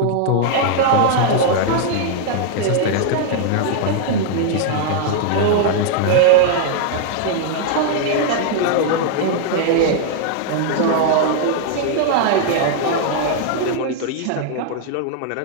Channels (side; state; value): both; different; correlation 0.00